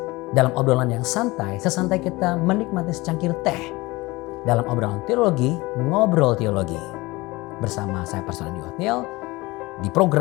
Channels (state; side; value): quieter; right; 21.8 dB